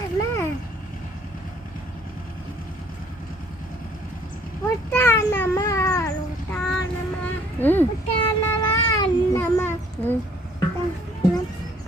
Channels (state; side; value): normal; both; correlation 0.60